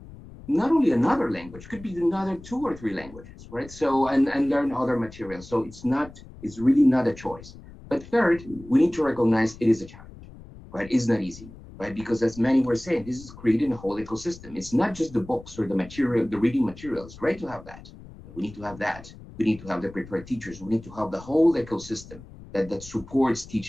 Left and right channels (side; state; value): left; noise; rumble, 18 dB below the sound